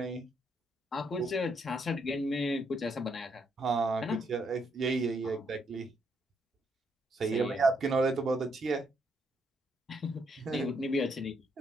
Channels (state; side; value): normal; both; correlation 0.75